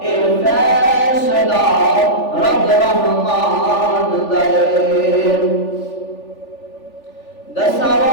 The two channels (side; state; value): right; late; 3.4 ms